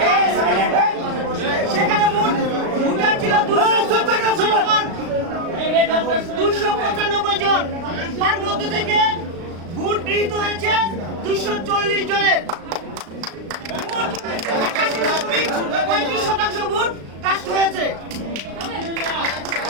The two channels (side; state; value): left; late; 36 ms